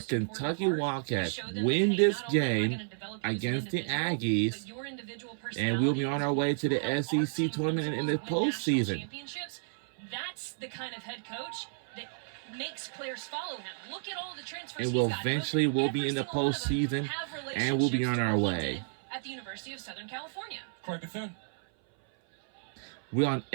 Wildcats win this game against the Aggies, and we'll be on our way to the SEC tournament in the postseason. That's the kind of head coach that makes players follow him. Look at all the transfers. And we'll be in the postseason, and we'll be on our way. At the University of Southern California. Corey Bethune. We're on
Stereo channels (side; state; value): left; silent; 57 dB below the other